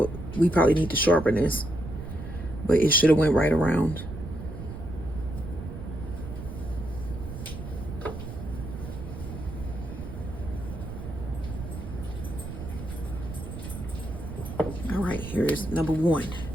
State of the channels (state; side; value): noise; right; rumble, 9 dB below the sound